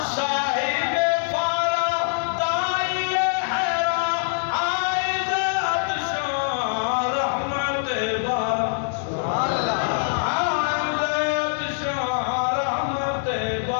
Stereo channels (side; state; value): right; silent; digital silence